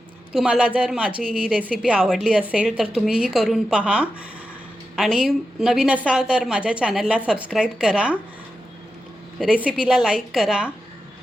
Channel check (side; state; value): both; normal; correlation 0.90